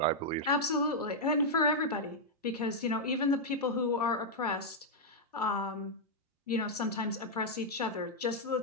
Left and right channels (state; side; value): normal; both; correlation -0.04